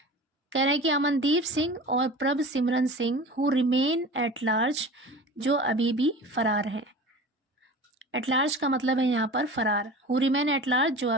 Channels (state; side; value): normal; both; correlation 0.37